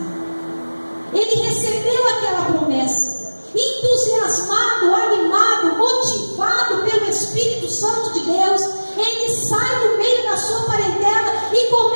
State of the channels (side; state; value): both; inverted; correlation -1.00